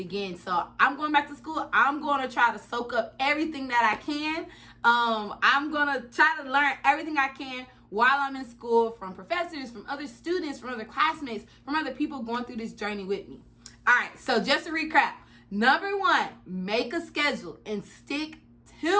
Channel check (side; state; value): both; identical; correlation 1.00